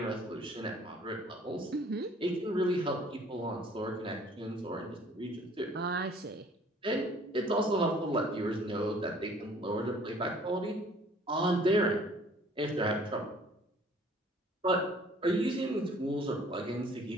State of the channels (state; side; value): normal; both; correlation 0.55